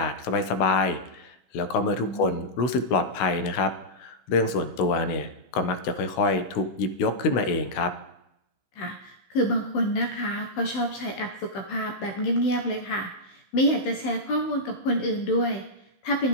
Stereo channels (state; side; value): late; right; 16 ms